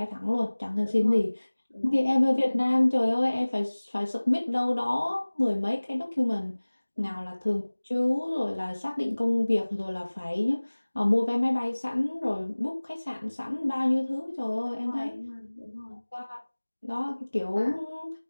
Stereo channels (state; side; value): inverted; both; correlation -1.00